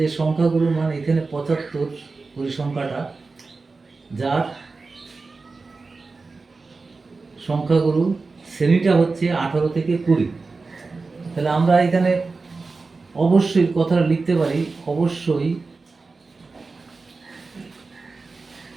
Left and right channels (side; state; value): left; quieter; 4.0 dB